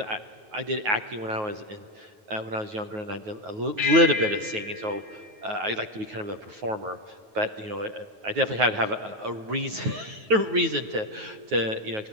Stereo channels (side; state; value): left; late; 9.4 ms